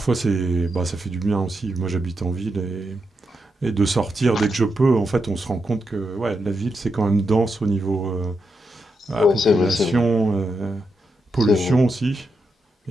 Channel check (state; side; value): normal; both; correlation 0.84